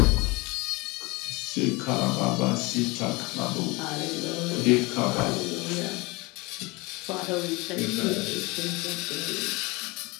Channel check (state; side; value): quieter; right; 24.9 dB